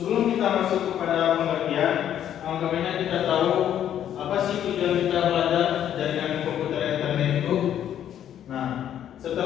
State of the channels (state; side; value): quieter; right; 10.4 dB